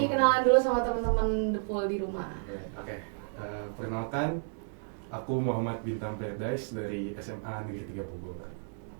kenalan dulu sama teman-teman The Pool di rumah. Oke. Perkenalkan, aku Muhammad Bintang Paradise dari SMA Negeri 3 Bogor.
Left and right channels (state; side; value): silent; left; digital silence